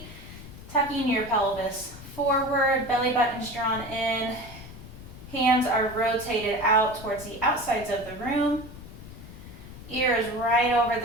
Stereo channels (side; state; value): left; noise; rumble, 15 dB below the sound